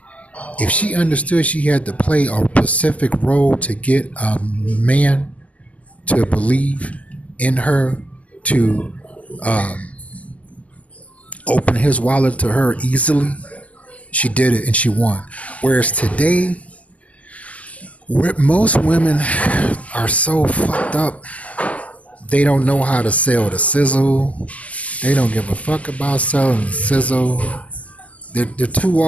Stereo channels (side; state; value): right; late; 0.071 ms